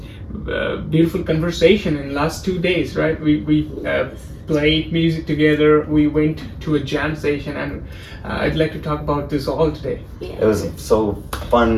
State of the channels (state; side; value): identical; both; correlation 1.00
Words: beautiful conversation in the last 2 days, right? We played music together, we went to a jam session, and I'd like to talk about this all today. Yeah. It was so